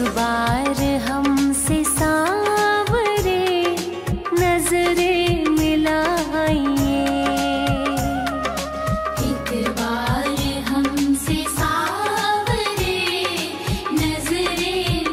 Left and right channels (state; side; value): identical; both; correlation 1.00